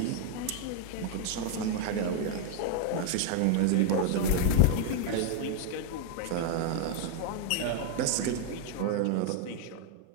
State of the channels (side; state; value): both; different; correlation 0.00